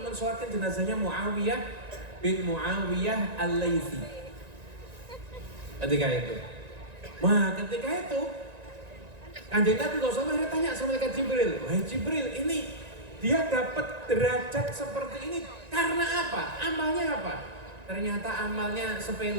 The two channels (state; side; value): late; left; 1.9 ms